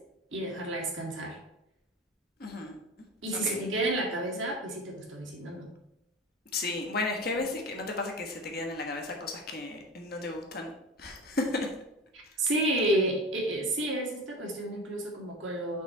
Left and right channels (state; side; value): normal; both; correlation 0.31